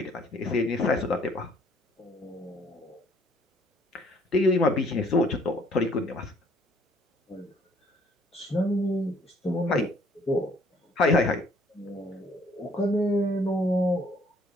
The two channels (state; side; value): normal; both; correlation 0.61